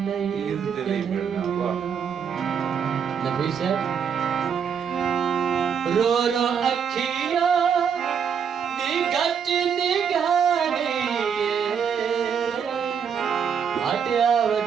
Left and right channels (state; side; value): quieter; left; 7.2 dB